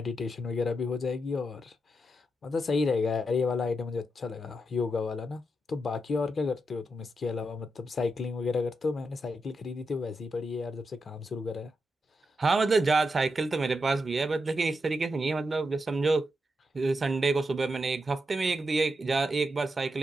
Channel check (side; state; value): both; normal; correlation 0.85